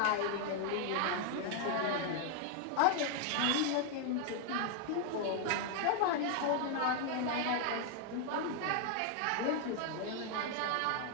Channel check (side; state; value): both; different; correlation 0.00